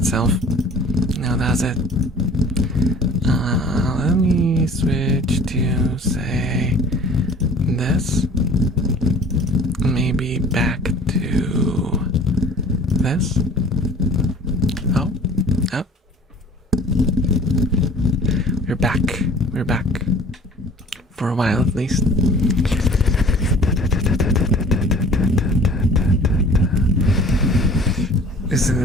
No, does it? Let me switch to, say, this. Maybe back to this. Oh. We're back. We're back. For a while, at least.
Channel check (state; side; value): normal; both; correlation 0.47